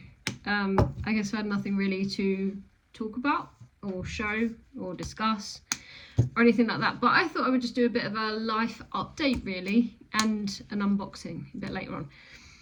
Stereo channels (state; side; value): identical; both; correlation 1.00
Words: I guess I had nothing really to talk about or show or discuss or anything like that, but I thought I would just do a bit of a life update really, and an unboxing a bit later